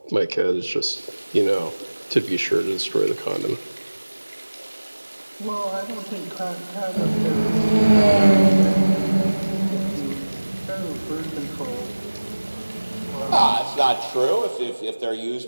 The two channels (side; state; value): both; inverted; correlation -1.00